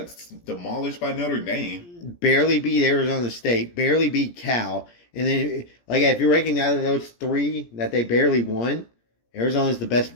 demolished by Notre Dame. Barely beat Arizona State. Barely beat Cal. And then, like, if you're ranking out of those three that they barely won, Arizona's the best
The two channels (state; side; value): late; right; 17 ms